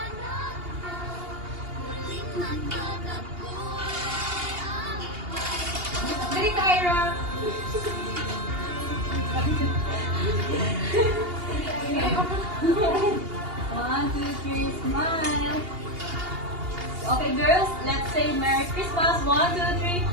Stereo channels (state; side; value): late; left; 2.8 ms